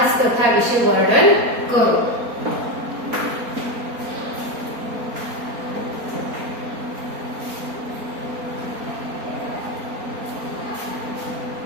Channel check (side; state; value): left; late; 4.3 ms